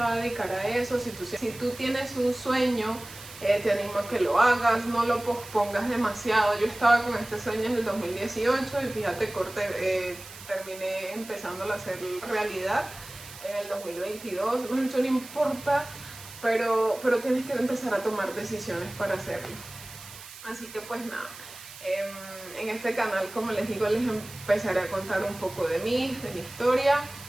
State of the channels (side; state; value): right; noise; hiss, 16 dB below the sound